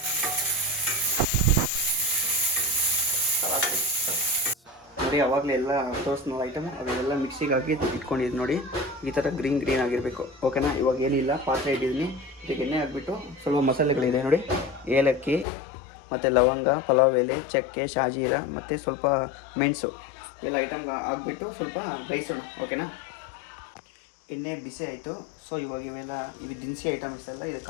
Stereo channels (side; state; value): right; drops out; at 15.5 s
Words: ನೋಡಿ ಅವಾಗಲೇ ಎಲ್ಲ ತೋರಿಸ್ನಲ್ಲ ಐಟಮು ಅದೆಲ್ಲ ಮಿಕ್ಸಿಗೆ ಹಾಕಿ ಇಟ್ಕೊಂಡಿದ್ದು ನೋಡಿ, ಈ ಥರ ಗ್ರೀನ್ ಆಗಿರಬೇಕು. ಓಕೆನಾ, ಇವಾಗ ಏನಿಲ್ಲ, ಪಾತ್ರೆ ಇಟ್ಟಿದ್ದೀನಿ, ಇದಕ್ಕೆ ಎಣ್ಣೆ ಹಾಕ್ಬಿಟ್ಟು ಸ್ವಲ್ಪ ಮಸಾಲೆಗಳಿದೆ ನೋಡಿ, ಏಲಕ್ಕಿ ಮತ್ತು ಲವಂಗ, ಪಲಾವ್ ಎಲೆ, ಚಕ್ಕೆ, ಶಾಜೀರ ಮತ್ತು ಸ್ವಲ್ಪ ಮೆಣಸು ಎಲ್ಲ ಐಟಮ್ ಹಾಕ್ಬಿಟ್ಟು ಸ್ವಲ್ಪ ಬೇಯಿಸೋಣ. ಓಕೆನಾ, ಎಣ್ಣೆ ಬಿಸಿ ಆಯಿತು. ಸೊ ಇವಾಗ ಇವೆಲ್ಲ ಇದು ದಿನಸಿ ಐಟಮ್ಸ್ ಎಲ್ಲ